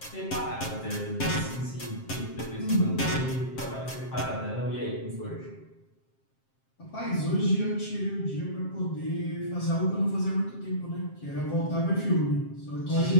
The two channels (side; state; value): right; late; 7.5 ms